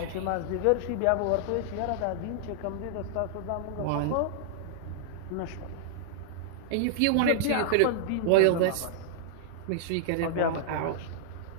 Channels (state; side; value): different; both; correlation -0.01